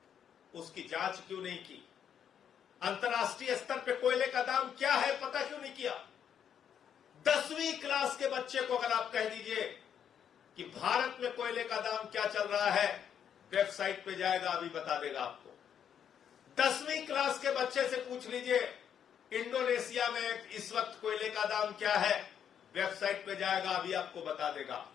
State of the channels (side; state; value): right; quieter; 8.6 dB